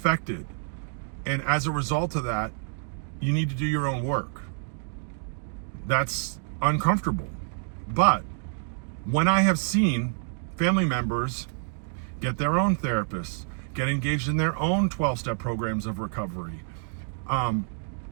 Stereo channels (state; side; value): silent; left; 57 dB below the other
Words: And as a result of that, you need to do your own work. That's uncomfortable. But when I have seen family members get their own therapists, get engaged in their own 12-step programs of recovery,